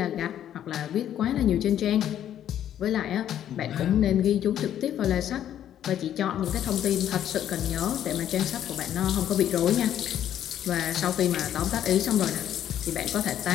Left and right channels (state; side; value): quieter; right; 10.7 dB